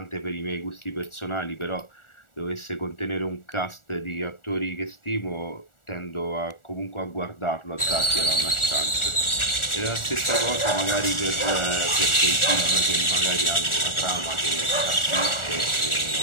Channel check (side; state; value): right; late; 1.4 ms